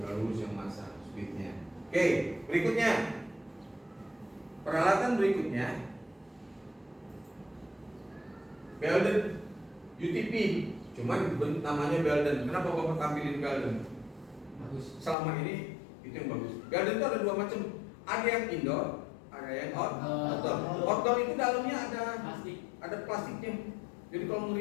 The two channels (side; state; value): right; drops out; at 15.2 s